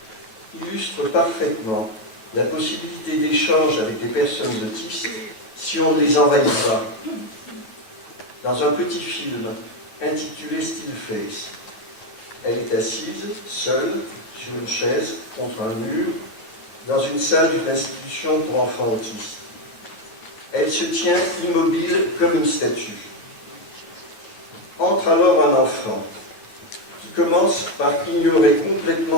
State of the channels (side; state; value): right; late; 9.3 ms